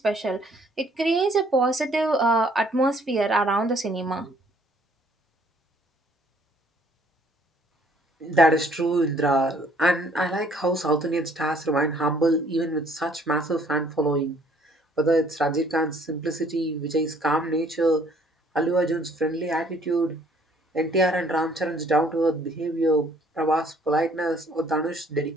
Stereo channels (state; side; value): normal; both; correlation 0.61